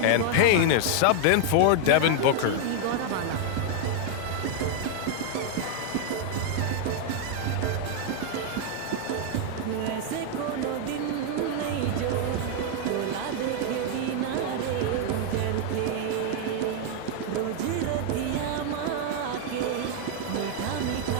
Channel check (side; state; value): both; different; correlation 0.00